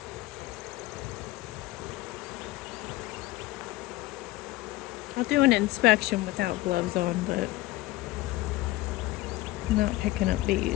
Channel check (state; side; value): quieter; right; 18.2 dB